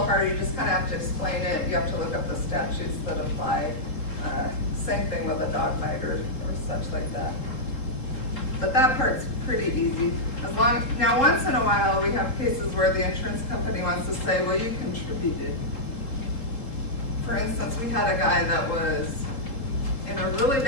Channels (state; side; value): late; right; 3.7 ms